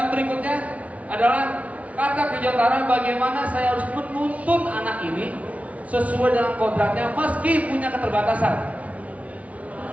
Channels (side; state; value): left; late; 0.067 ms